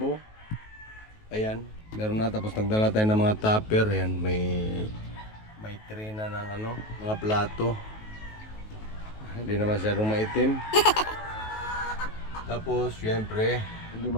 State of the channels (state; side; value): late; right; 19 ms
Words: Ayan. Meron na, tapos nagdala tayo ng mga tupper. Ayan, may tray na ng mga plato. Hindi na masyadong maitim. Tapos, syempre, hindi